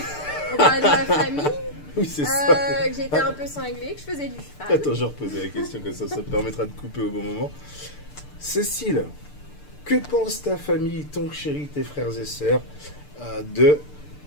On parlait de ma famille, Oui, c'est ça. que j'étais un peu cinglée, que je faisais du cheval. Attends, je reposais la question comme ça me permettra de couper au bon moment. Cécile, que pense ta famille, ton chéri, tes frères et sœurs de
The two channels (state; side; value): late; right; 6.7 ms